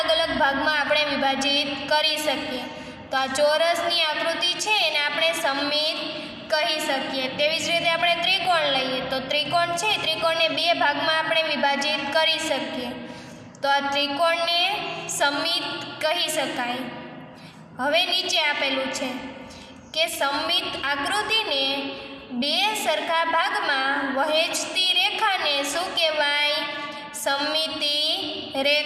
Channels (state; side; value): identical; both; correlation 1.00